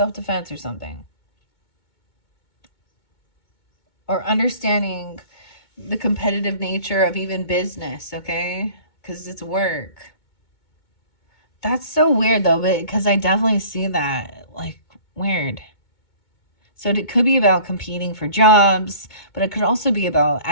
or something. Or understanding the competitive nature of even business, okay? Because it's work. That's so weird though, because I definitely see that. Like, weird. So it could be about competing for jobs, but it could also be about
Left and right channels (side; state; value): right; late; 2.2 ms